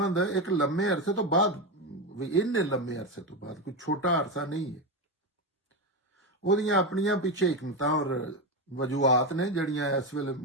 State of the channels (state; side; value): normal; both; correlation 0.13